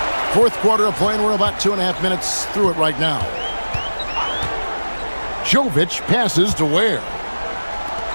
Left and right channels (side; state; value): both; inverted; correlation -1.00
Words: Fourth quarter of play, and we're about 2.5 minutes through it right now. Jovic passes to Ware.